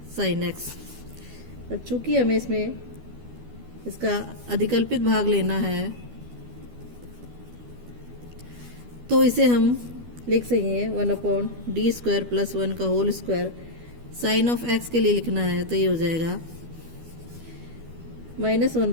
sin x। अब चूँकि हमें इसमें इसका अधिकल्पित भाग लेना है तो इसे हम लिख सकेंगे 1/d² + 1 का whole square sine of x के लिए लिखना है तो ये हो जाएगा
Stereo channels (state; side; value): late; left; 12 ms